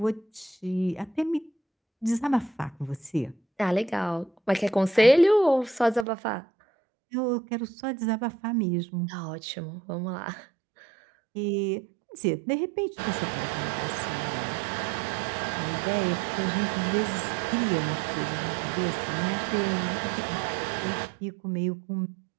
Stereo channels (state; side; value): drops out; left; at 6.1 s